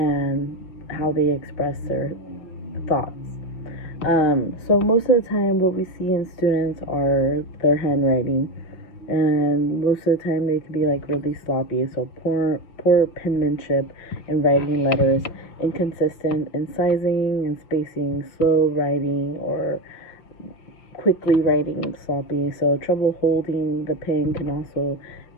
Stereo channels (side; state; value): right; late; 6.1 ms